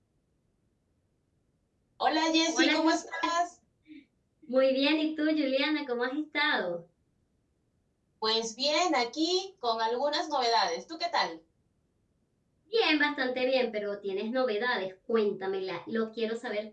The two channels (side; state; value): both; identical; correlation 1.00